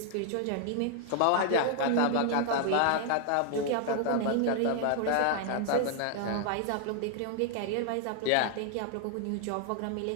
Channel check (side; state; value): both; different; correlation 0.00